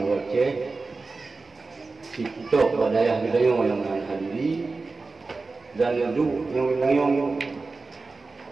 kita pada ayah bidayong yang hadiri dan yadu yang bidayong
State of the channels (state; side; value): quieter; left; 3.8 dB